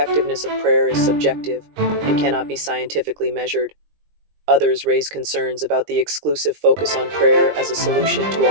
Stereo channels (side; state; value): left; late; 20 ms